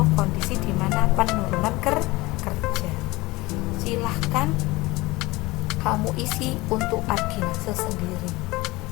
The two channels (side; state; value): right; quieter; 21.3 dB